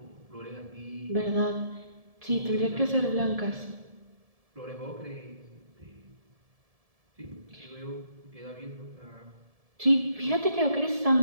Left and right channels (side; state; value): left; late; 1.7 ms